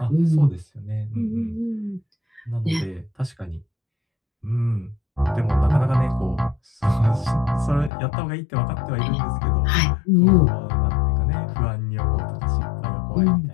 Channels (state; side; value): drops out; right; at 7.9 s